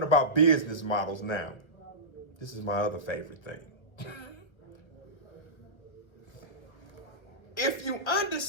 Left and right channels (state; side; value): late; right; 1.3 ms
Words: about business models now. This is my other favorite thing. If you